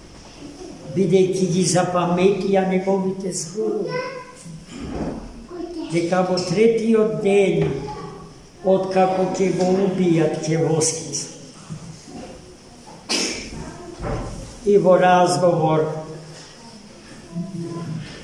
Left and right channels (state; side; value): identical; both; correlation 1.00